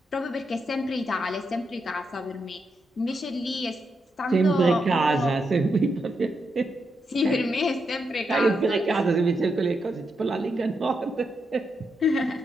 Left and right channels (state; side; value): normal; both; correlation 0.83